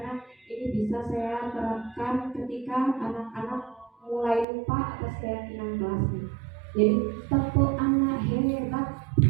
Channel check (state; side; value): drops out; left; at 4.5 s